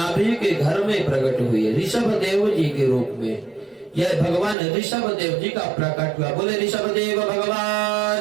के घर में प्रकट हुए ऋषभ देव जी के रूप में। यह भगवान ऋषभ देव जी का प्रकट हुआ। बोले ऋषभ देव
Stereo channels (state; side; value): drops out; left; at 4.5 s